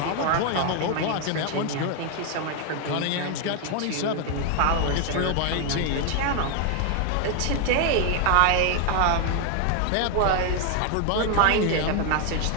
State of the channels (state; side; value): different; both; correlation 0.00